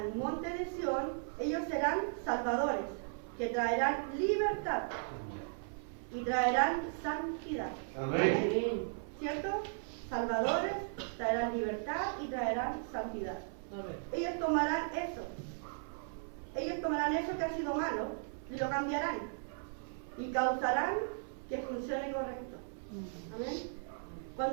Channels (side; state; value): left; silent; 53 dB below the other